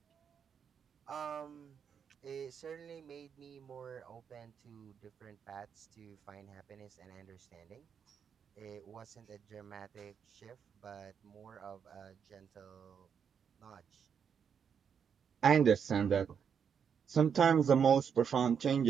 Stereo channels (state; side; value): quieter; left; 7.3 dB